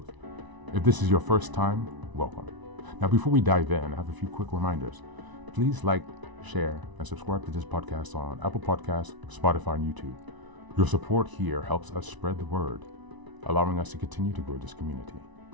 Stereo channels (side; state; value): left; late; 1.0 ms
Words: If this is your first time, welcome. Now, before we dive in, I have a few quick reminders. Please like, share, and subscribe to this podcast on Apple Podcasts, Spotify, and YouTube. Your support here helps us spread the word, allowing us to continue to grow this community.